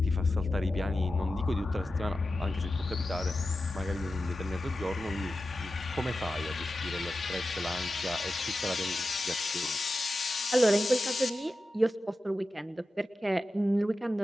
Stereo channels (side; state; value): both; normal; correlation 0.93